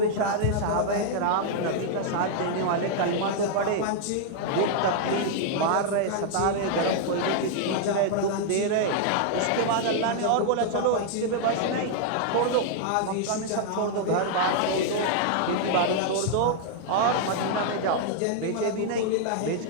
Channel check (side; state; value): both; different; correlation 0.00